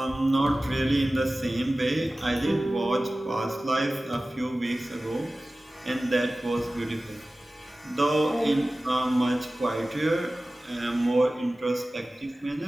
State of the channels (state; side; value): normal; both; correlation 0.97